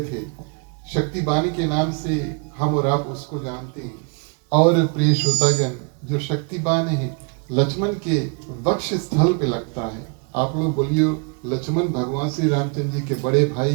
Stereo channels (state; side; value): quieter; left; 35.0 dB